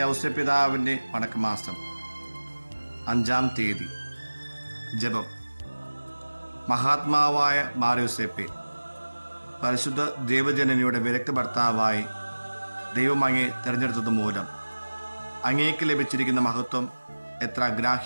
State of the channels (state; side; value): inverted; both; correlation -1.00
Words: പിതാവിൻ്റെ വണക്കമാസം 5-ാം തീയതി. ജപം. മഹാത്മാവായ മാറിയോസേപ്പെ, പരിശുദ്ധ ദൈവജനനിയുടെ വിരക്ത ഭർത്താവായി ദൈവം അങ്ങേ തിരഞ്ഞെടുത്തത് മൂലം അങ്ങേക്ക് ലഭിച്ചിരിക്കുന്ന മഹത്വം എത്ര